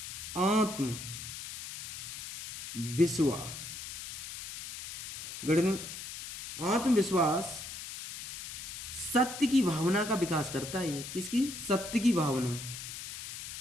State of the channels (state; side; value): noise; left; hiss, 9 dB below the sound